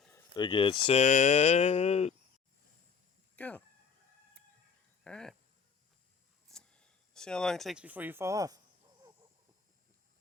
Get set, go. All right. See how long it takes before you fall off.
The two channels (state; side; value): quieter; right; 6.0 dB